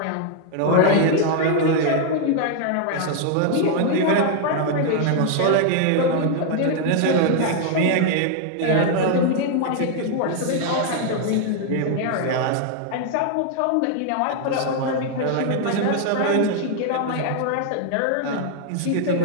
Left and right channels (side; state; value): both; different; correlation 0.00